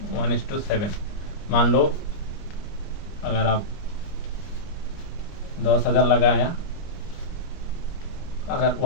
1:7। मान लो अगर आप 10,000 लगाया, अगर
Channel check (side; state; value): right; late; 29 ms